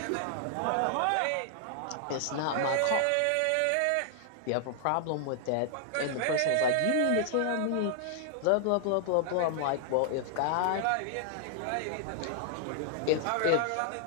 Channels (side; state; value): both; different; correlation 0.00